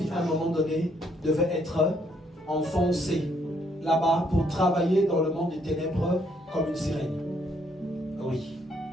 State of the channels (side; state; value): both; normal; correlation 0.70